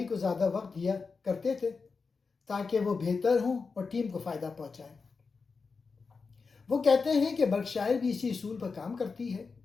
کو زیادہ وقت دیا کرتے تھے تاکہ وہ بہتر ہوں اور ٹیم کو فائدہ پہنچائیں۔ وہ کہتے ہیں کہ برکشائر بھی اسی اصول پر کام کرتی ہے،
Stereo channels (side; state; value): right; quieter; 4.7 dB